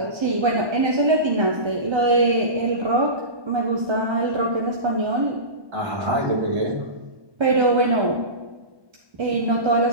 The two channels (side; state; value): left; late; 1.2 ms